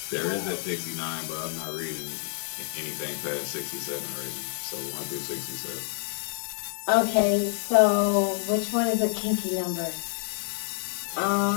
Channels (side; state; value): right; silent; 59 dB below the other